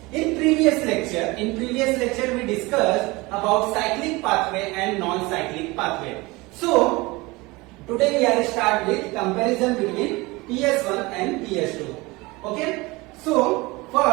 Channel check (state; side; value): quieter; left; 23.0 dB